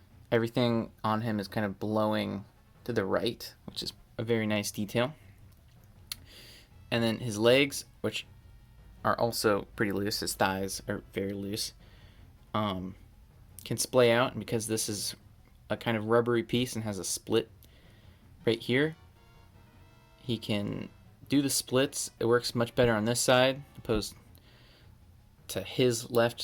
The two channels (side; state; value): both; identical; correlation 1.00